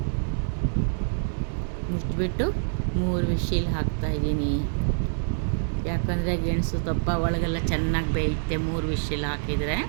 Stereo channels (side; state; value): left; silent; digital silence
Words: ಮುಚ್ಚಿಬಿಟ್ಟು 3 ವಿಶಿಲ್ ಹಾಕ್ತಾಯಿದ್ದೀನಿ. ಯಾಕಂದರೆ ಗೆಣಸು ದಪ್ಪ ಒಳಗೆಲ್ಲ ಚೆನ್ನಾಗಿ ಬೇಯುತ್ತೆ 3 ವಿಶಿಲ್ ಹಾಕಿದರೆ.